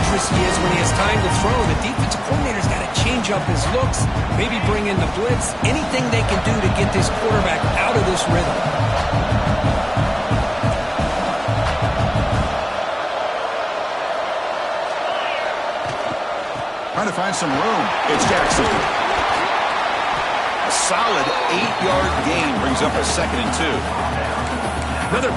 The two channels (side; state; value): both; identical; correlation 1.00